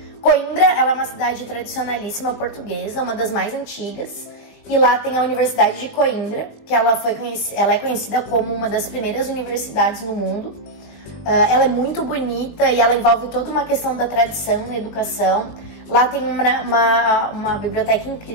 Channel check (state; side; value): late; right; 20 ms